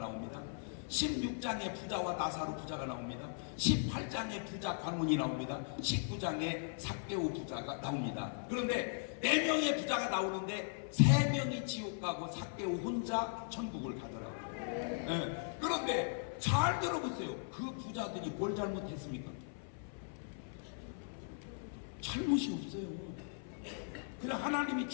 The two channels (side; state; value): right; silent; 52 dB below the other